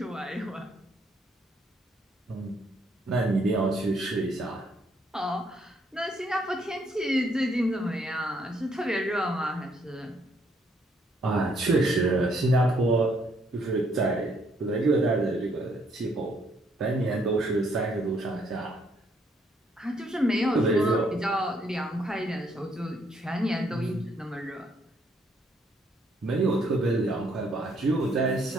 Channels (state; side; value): normal; both; correlation 0.69